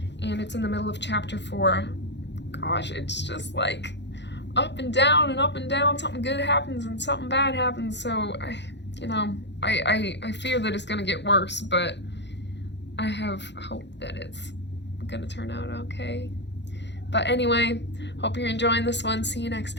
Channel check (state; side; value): late; right; 0.51 ms